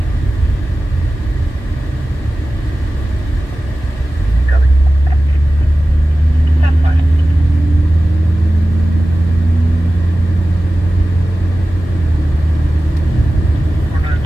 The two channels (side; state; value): both; normal; correlation 0.95